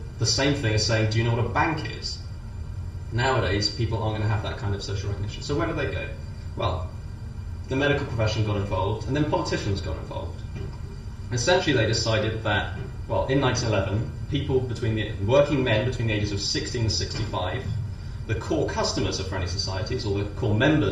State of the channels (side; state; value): both; identical; correlation 1.00